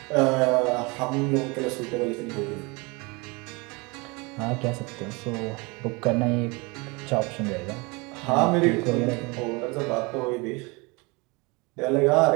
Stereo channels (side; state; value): left; quieter; 27.4 dB